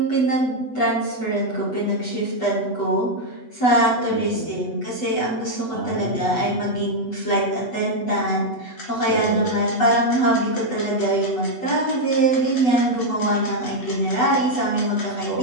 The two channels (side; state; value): right; late; 8.1 ms